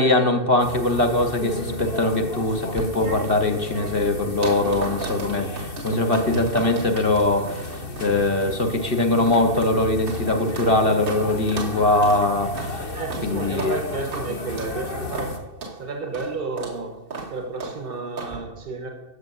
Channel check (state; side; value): late; left; 2.6 ms